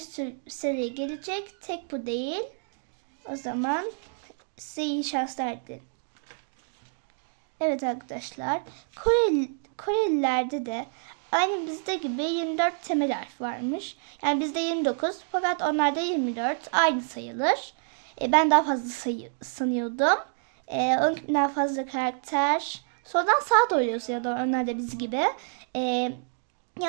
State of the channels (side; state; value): left; silent; digital silence